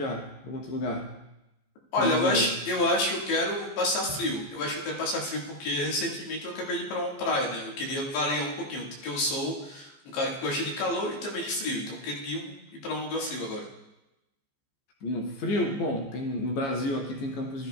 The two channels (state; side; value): late; right; 15 ms